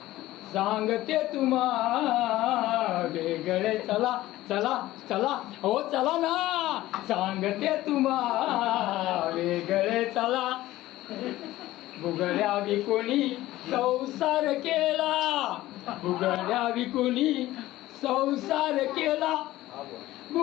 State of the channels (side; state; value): right; quieter; 16.1 dB